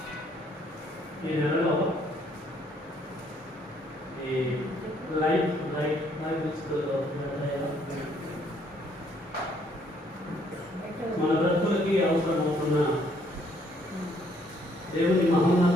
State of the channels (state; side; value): normal; both; correlation 0.67